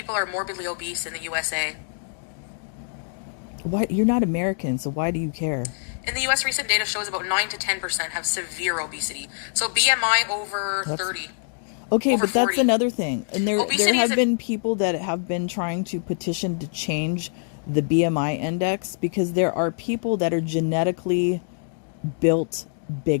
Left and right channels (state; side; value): silent; right; digital silence